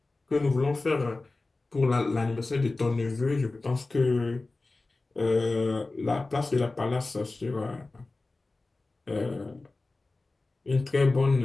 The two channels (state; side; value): quieter; right; 3.3 dB